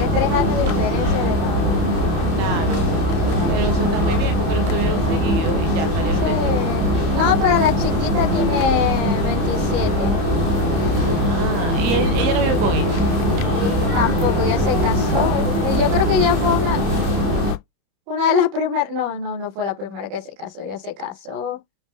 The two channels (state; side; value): late; left; 30 ms